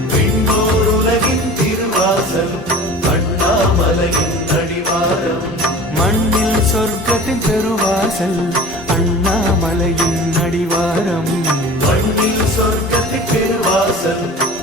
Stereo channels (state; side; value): normal; both; correlation 0.39